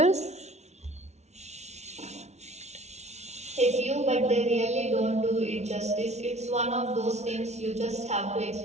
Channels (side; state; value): left; late; 0.32 ms